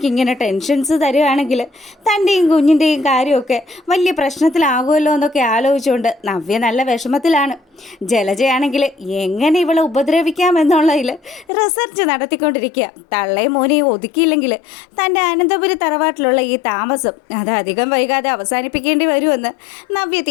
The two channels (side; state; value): right; drops out; at 11.5 s